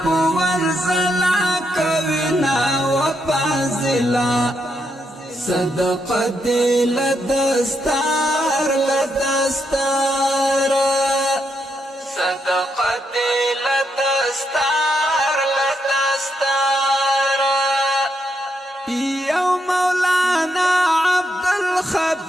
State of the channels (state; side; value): normal; both; correlation 0.80